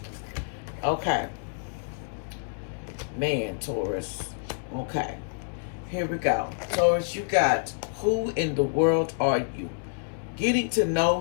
Okay. Man, Taurus. Okay. Here we go. Taurus, you got, who in the world are you? Getting to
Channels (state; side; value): silent; right; digital silence